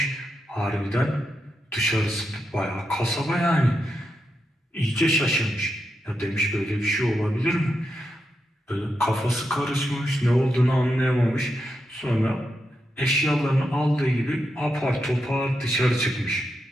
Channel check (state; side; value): normal; both; correlation 0.85